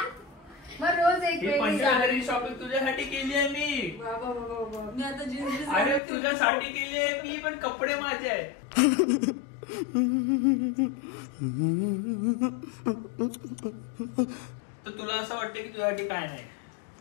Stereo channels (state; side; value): drops out; right; at 6.0 s